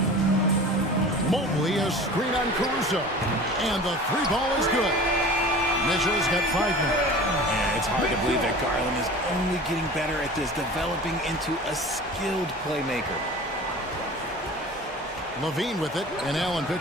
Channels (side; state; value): both; normal; correlation 0.39